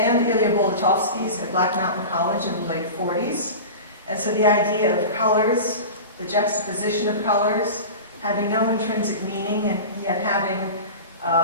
Ilya Bolotovsky's at Black Mountain College in the late 40s. And so the idea of colors, the juxtaposition of colors, having no intrinsic meaning and yet having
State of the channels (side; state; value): both; inverted; correlation -0.31